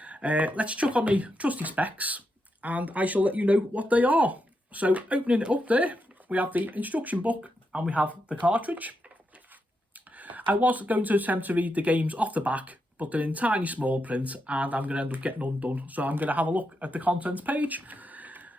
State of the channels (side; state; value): both; normal; correlation 0.84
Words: Let's chuck on the trusty specs and I shall let you know what they are. So opening it up there, we have the instruction book and we have the cartridge. I was going to attempt to read the games off the back, but they're in tiny small print and I'm going to end up getting undone. So I'm going to have a look at the contents page.